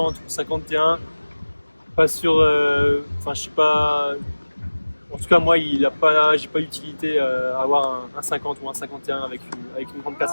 ou 51, pas sûr. Enfin, je sais pas. En tout cas, moi, j'ai pas d'utilité à avoir un 50 ou un 51 avec une grande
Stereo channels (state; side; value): inverted; both; correlation -1.00